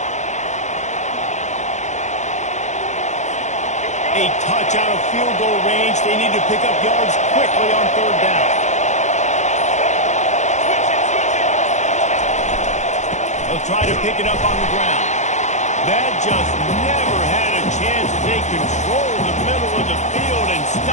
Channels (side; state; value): right; late; 0.34 ms